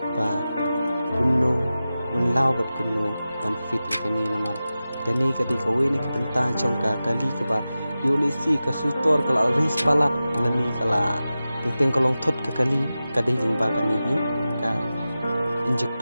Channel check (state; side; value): inverted; both; correlation -0.94